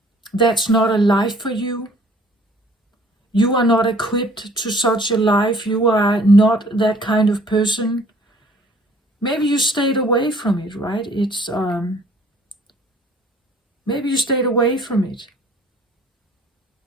That's not a life for you. You are not equipped to such a life. You are not that kind of person. Maybe you stayed away from it, right? It's maybe you stayed away from it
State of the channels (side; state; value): both; normal; correlation 0.56